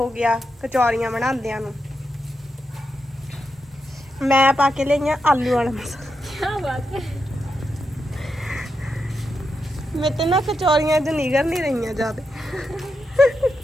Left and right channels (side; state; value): both; normal; correlation 0.85